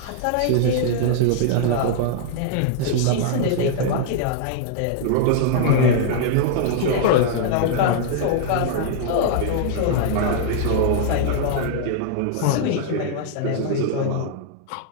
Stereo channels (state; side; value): different; both; correlation -0.01